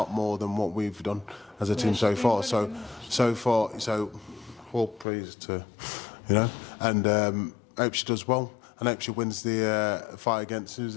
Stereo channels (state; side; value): drops out; right; at 5.1 s